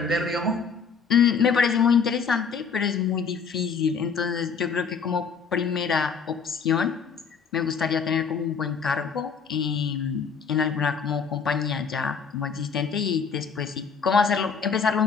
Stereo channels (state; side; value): quieter; right; 5.9 dB